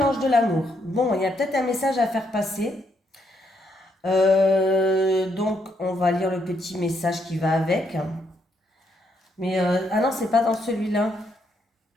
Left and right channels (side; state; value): both; normal; correlation 0.76